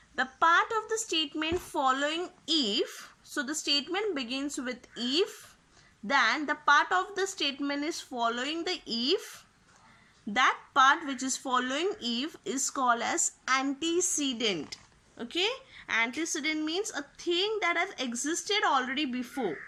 the part of the statement following if, so the statement begins with if, then the part of the statement is following the if, that part which is following if is called as antecedent. Okay, antecedent means a thing that has existed already before,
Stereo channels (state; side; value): identical; both; correlation 1.00